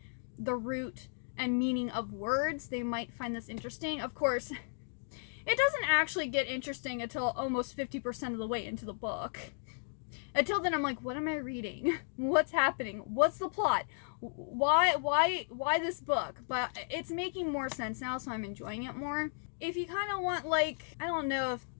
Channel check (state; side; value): silent; right; digital silence